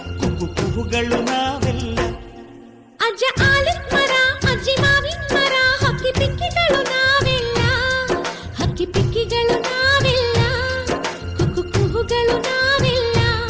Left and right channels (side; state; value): both; identical; correlation 1.00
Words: ಕುಕ್ಕು ಕುಹುಗಳು ನಾವೆಲ್ಲ. ಅಜ್ಜ ಆಲದ ಮರ ಅಜ್ಜಿ ಮಾವಿನ ಮರ ಹಕ್ಕಿ ಪಿಕ್ಕಿಗಳು ನಾವೆಲ್ಲ, ಹಕ್ಕಿ ಪಿಕ್ಕಿಗಳು ನಾವೆಲ್ಲ, ಕುಕ್ಕು ಕುಹುಗಳು ನಾವೆಲ್ಲ.